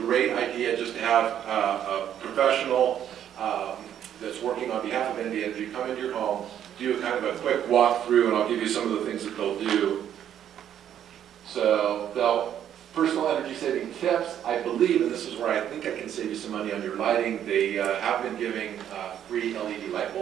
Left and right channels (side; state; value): left; quieter; 10.1 dB